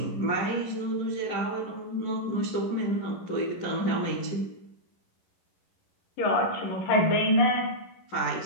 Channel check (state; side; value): late; right; 11 ms